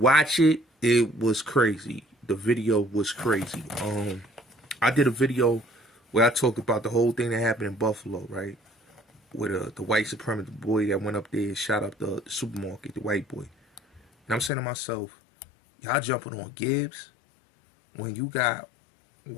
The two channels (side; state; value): right; drops out; at 14.5 s